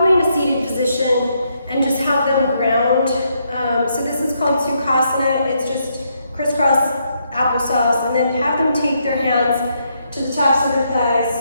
in a seated position, and just have them ground. So this is called Sukhasana. It's just crisscross applesauce, and then have them take their hands to the tops of their thighs.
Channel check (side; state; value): both; inverted; correlation -0.77